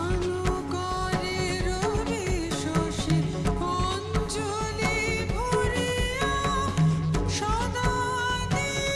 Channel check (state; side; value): identical; both; correlation 1.00